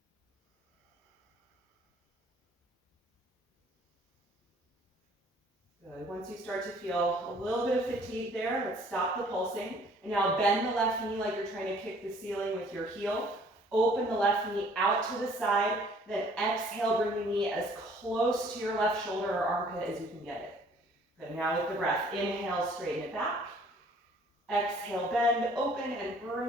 Good. Once you start to feel a little bit of fatigue there, let's stop the pulsing. And now bend the left knee like you're trying to kick the ceiling with your heel. Open the left knee out to the side. Then exhale, bring the knee as close to your left shoulder or armpit as you can get it. Good. Now with the breath, inhale, straighten it back. Exhale, bend, open, and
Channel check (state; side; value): normal; both; correlation 0.57